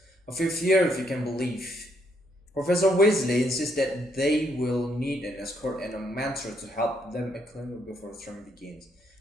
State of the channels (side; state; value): both; normal; correlation 0.73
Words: A 5th year, if you can believe. Professor Weasley insists that they will need an escort and a mentor to help them acclimate before the term begins.